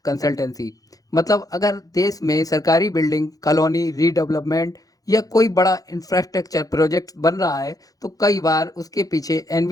consultancy. मतलब अगर देश में सरकारी बिल्डिंग, कॉलोनी रीडेवलपमेंट या कोई बड़ा इंफ्रास्ट्रक्चर प्रोजेक्ट बन रहा है, तो कई बार उसके पीछे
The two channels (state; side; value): late; right; 0.17 ms